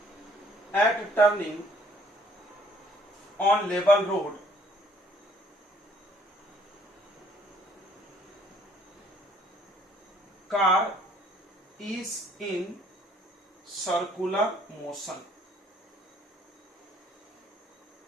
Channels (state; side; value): normal; both; correlation 0.61